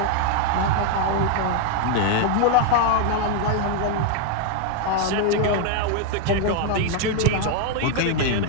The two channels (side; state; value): both; different; correlation 0.00